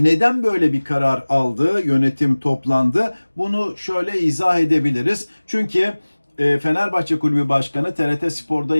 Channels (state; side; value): inverted; both; correlation -1.00